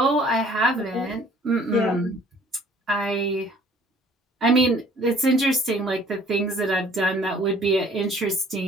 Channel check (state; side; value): normal; both; correlation 0.55